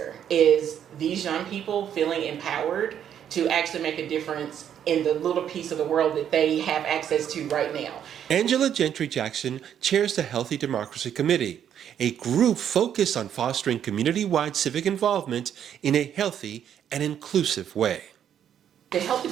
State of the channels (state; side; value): quieter; left; 9.4 dB